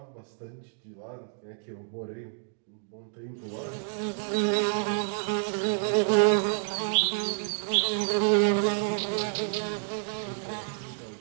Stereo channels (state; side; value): silent; left; 58 dB below the other